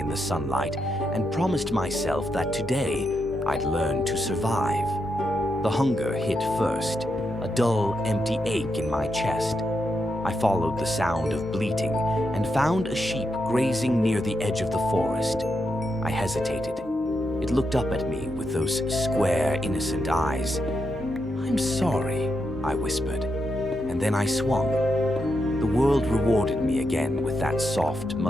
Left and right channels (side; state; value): both; normal; correlation 0.83